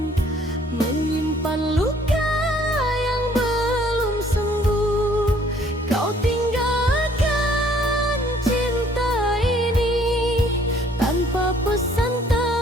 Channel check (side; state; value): both; normal; correlation 0.60